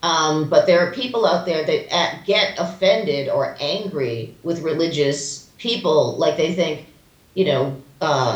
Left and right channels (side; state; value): both; identical; correlation 1.00